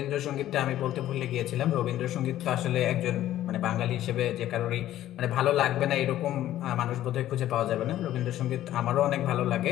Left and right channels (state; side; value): quieter; right; 13.2 dB